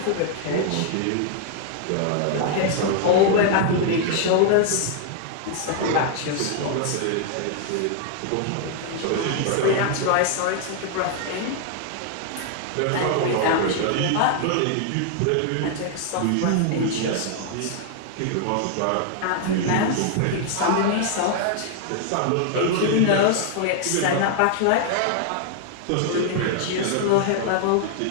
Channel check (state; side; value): different; both; correlation 0.00